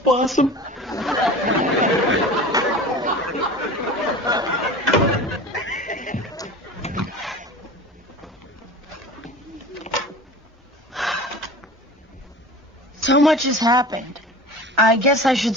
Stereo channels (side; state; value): both; normal; correlation 0.36